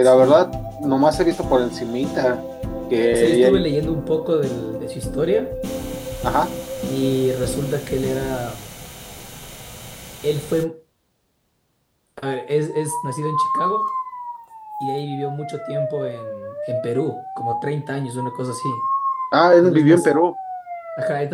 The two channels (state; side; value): identical; both; correlation 1.00